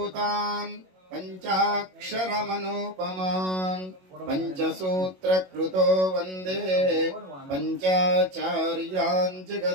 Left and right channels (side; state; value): left; late; 22 ms